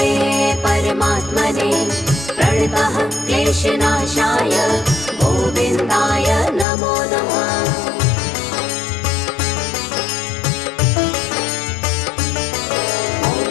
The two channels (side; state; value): right; drops out; at 6.7 s